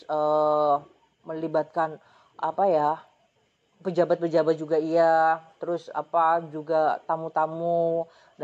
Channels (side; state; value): both; identical; correlation 1.00